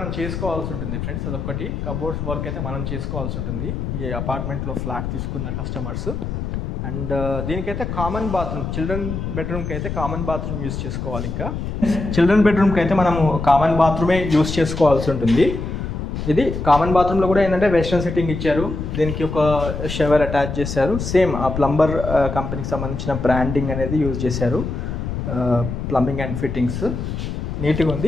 చేసుకోవాల్సి ఉంటుంది ఫ్రెండ్స్, అదొకటి. కబోర్డ్స్ వర్క్ అయితే మనం చేసుకోవాల్సి ఉంటుంది ఈ అపార్ట్మెంట్లో ఫ్లాట్ తీసుకున్న కస్టమర్స్. అండ్ దీనికైతే కామన్ బాత్రూమ్, చిల్డ్రన్ బెడ్రూమ్కి అయితే కామన్ బాత్రూమ్ యూస్ చేసుకోవాలి. ఇంకా చిల్డ్రన్ బెడ్రూమ్కి అయితే మనము కామన్ బాత్రూమే యూస్ చేసుకోవాల్సి ఉంటుంది. ఇది కామన్ బాత్రూంలో కూడా ఏంటంటే వెస్ట్రన్ సిట్టింగ్ ఇచ్చారు, దీనికి ఒక షవర్ అటాచ్ చేశారు. సేమ్ ఆ ప్లంబర్ కంపెనీకి సంబంధించిన బ్రాండింగ్ అనేది యూజ్ చేశారు. ప్లంబింగ్ అండ్ ఫిట్టింగ్స్ నీట్గా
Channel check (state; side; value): noise; left; rumble, 4 dB below the sound